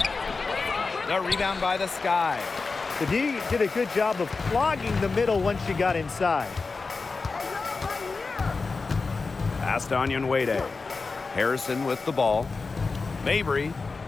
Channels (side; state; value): right; quieter; 4.2 dB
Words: The rebound by the Sky. The D did a good job of clogging the middle once she got inside. Pass to Onyenwere. Harrison with the ball. Mabry,